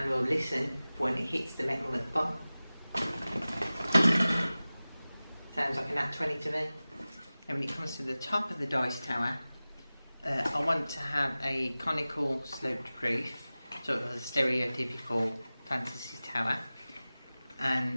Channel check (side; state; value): both; inverted; correlation -0.97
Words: we'll listen for when it hits the metal at the bottom. Sounds like a nat 20 to me. And when it comes to the top of the dice tower, I want to have a conical sloped roof, sort of a stereotypical fantasy tower,